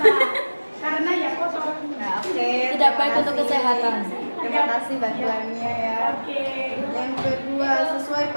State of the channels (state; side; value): inverted; both; correlation -1.00